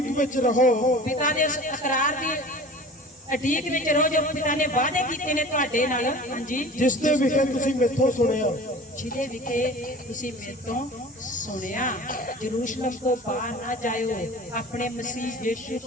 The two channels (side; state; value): both; normal; correlation 0.40